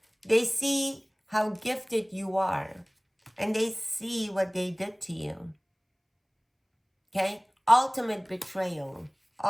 see how gifted you are, and they see what they did to you. Okay? Ultimate betrayal.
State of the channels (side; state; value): both; identical; correlation 1.00